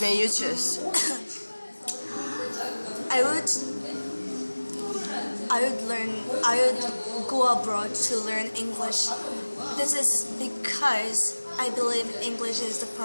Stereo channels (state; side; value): inverted; both; correlation -1.00